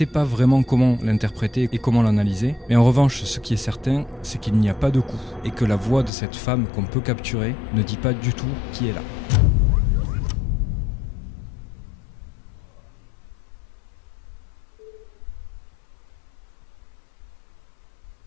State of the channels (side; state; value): right; drops out; at 6.1 s